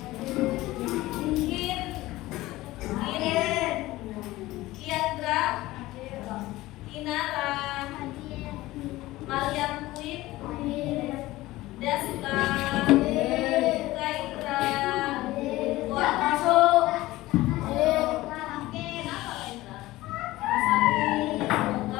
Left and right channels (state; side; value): quieter; right; 17.9 dB